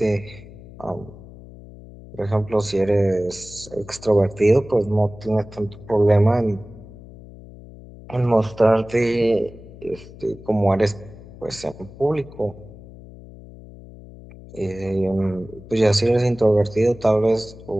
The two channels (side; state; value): left; noise; hum, 18 dB below the sound